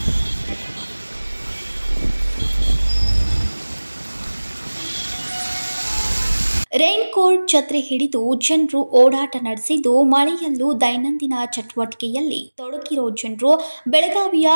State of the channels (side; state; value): both; inverted; correlation -1.00